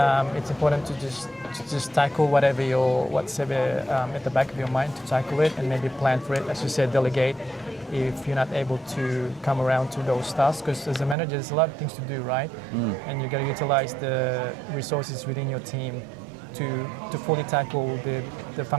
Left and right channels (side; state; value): left; drops out; at 11.2 s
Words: it's important to just tackle what's at the back of your mind, to tackle it and maybe plan for it. As you said, delegate if you're not able to come around to those tasks, because as a manager there's a lot of things to do, right? And you got to utilize the resources within your team to fully tackle the